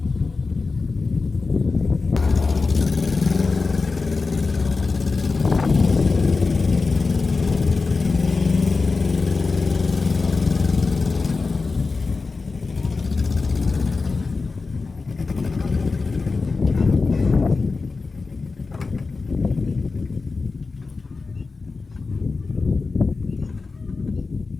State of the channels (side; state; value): right; quieter; 4.1 dB